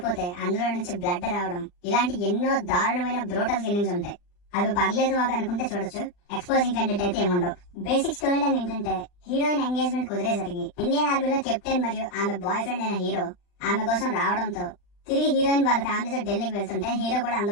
అందులో నుంచి బ్లడ్ రావడం, ఇలాంటి ఎన్నో దారుణమైన బ్రూటల్ కిల్లింగ్స్ ఉంటాయి. అవి పర్లేదు మాకు అనుకుంటే చూడొచ్చు. ఎక్స్పోజింగ్ కంటెంట్ అయితే ఏముండవు. బేసిక్ స్టోరీ లైన్ ఏంటంటే హీరోయిన్ ఎంగేజ్మెంట్ కుదిరేసరికి ఇండియన్ ఆర్మీలో కెప్టెన్ మరియు ఆమె బాయ్ ఫ్రెండ్ అయిన హీరో ఆమె కోసం రావడంతో తిరిగి హీరోయిన్ వాళ్ళ ఫ్యామిలీతో ఢిల్లీకి వెళ్తుంటే హీరో కూడా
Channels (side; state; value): right; late; 39 ms